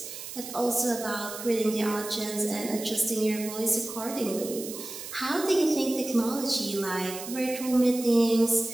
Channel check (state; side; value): noise; right; hiss, 10 dB below the sound